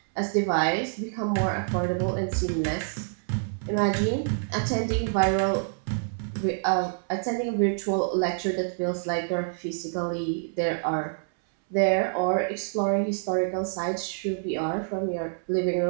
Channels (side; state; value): left; silent; 60 dB below the other